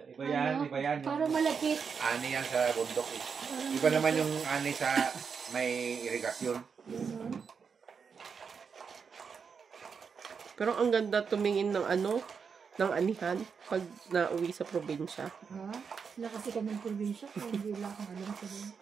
Iba yan, iba yan. parang malakit. Ani yan sa bundok eh. Parang Iba naman yung ani sa may irigasyon. Ganun. Pero ang ganda tumingin ng ano, ng anihan pag nauwi sa probinsya. Ha? Sila kasi kami ng probinsya. Kaya hindi wala akong alam sa din.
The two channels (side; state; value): left; quieter; 6.0 dB